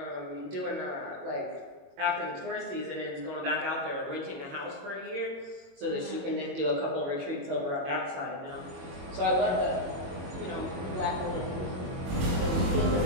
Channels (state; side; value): late; left; 22 ms